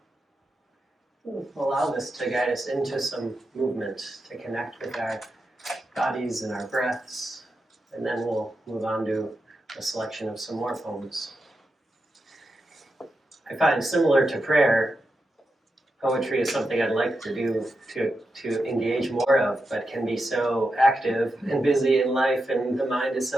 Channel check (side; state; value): both; normal; correlation 0.88